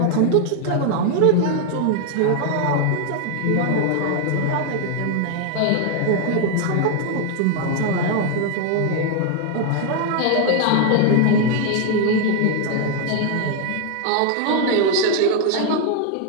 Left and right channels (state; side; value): different; both; correlation 0.00